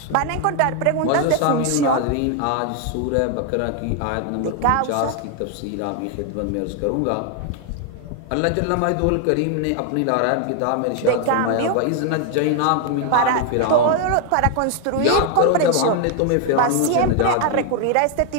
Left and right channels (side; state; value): both; different; correlation 0.00